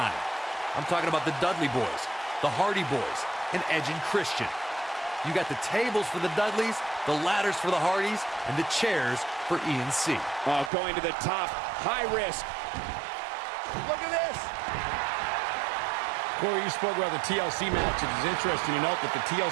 I'm talking about the Dudley Boys, the Hardy Boys, and Edge and Christian. You got the tables for the Dudleys, the ladders for the Hardys, and the chairs for E&C. Oh, going to the top, high risk. Look at this. Corey, you spoke about the TLC match. It is interesting to note that the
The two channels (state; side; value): drops out; left; at 10.7 s